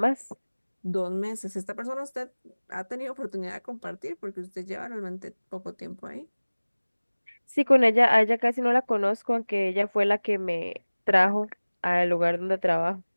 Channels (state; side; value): inverted; both; correlation -1.00